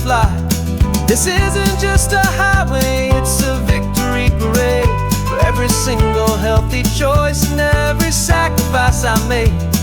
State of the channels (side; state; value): both; identical; correlation 1.00